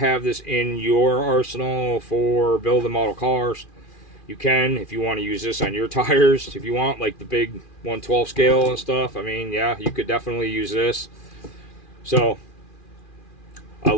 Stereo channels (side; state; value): right; late; 2.4 ms